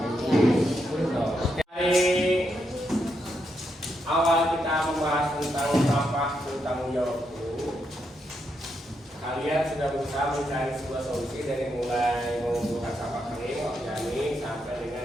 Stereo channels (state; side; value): normal; both; correlation 0.81